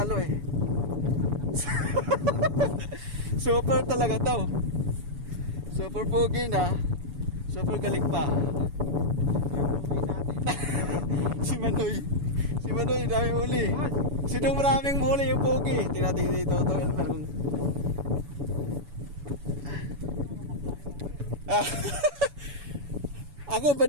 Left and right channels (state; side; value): late; left; 7.0 ms